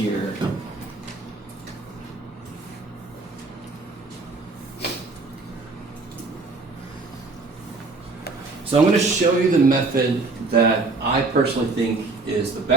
So I'm going to show you the method that I personally think is the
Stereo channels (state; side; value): quieter; left; 3.7 dB